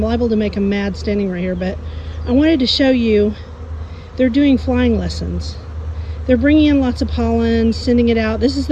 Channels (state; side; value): identical; both; correlation 1.00